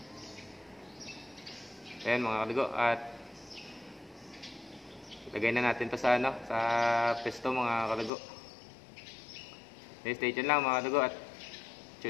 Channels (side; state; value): right; drops out; at 8.1 s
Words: Ayan mga kadugo, at lagay na natin to sa sa pesto mga kadugo. Stay tuned lang mga kadugo, at